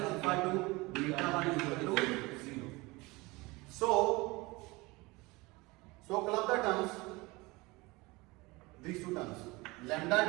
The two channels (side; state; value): left; quieter; 23.3 dB